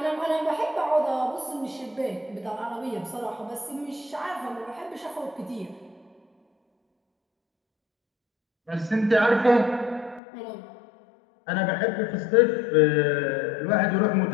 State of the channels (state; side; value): drops out; right; at 10.2 s